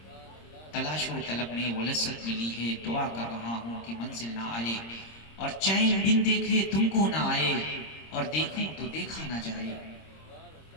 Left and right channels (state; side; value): late; right; 26 ms